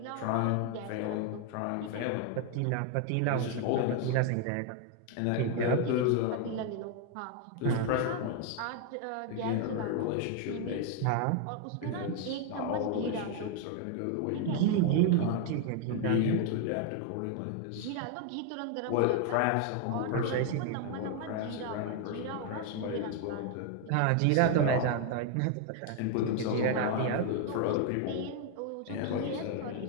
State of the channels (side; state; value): both; different; correlation 0.00